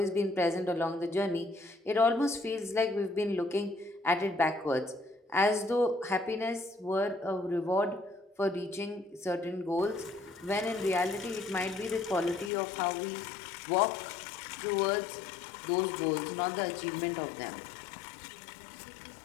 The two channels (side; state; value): right; drops out; at 12.5 s